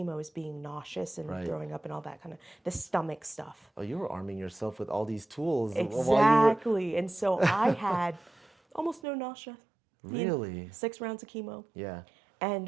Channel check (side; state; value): left; drops out; at 9.0 s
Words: is being nauseous and throwing up and all that kind of, the stomach stuff. Oh, you were arming yourself with all these tools. Exactly. And so I had almost no nausea. Really? 6 rounds of chemo. Yeah.